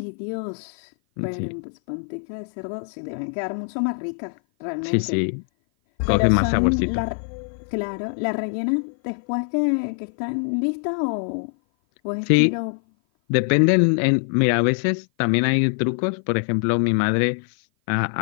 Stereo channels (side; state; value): right; silent; 56 dB below the other